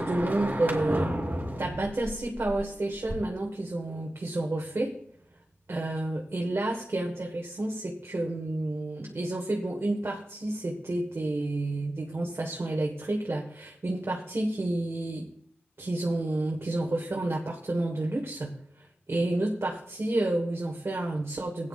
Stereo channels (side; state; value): both; normal; correlation 0.93